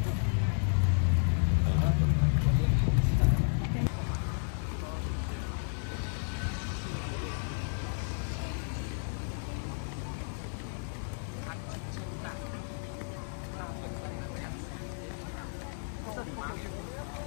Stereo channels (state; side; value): silent; right; digital silence